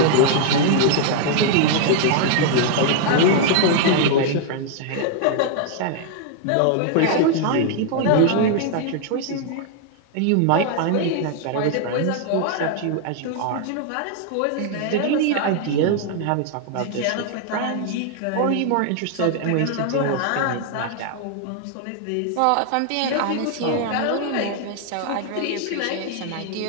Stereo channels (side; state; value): both; different; correlation 0.00